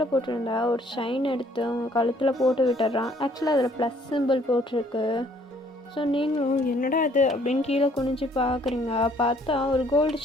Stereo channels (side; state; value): both; normal; correlation 0.62